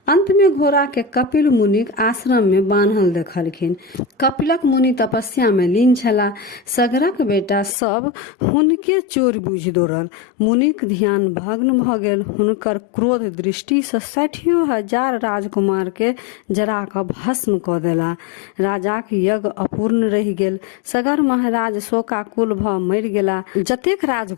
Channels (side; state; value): right; drops out; at 7.8 s